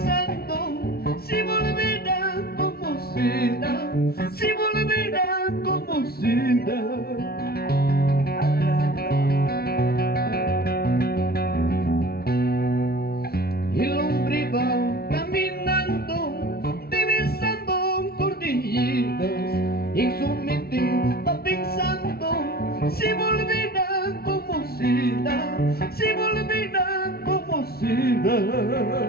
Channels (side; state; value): right; late; 0.45 ms